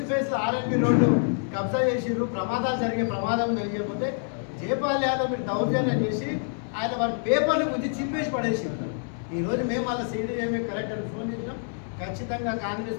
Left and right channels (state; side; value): silent; right; 60 dB below the other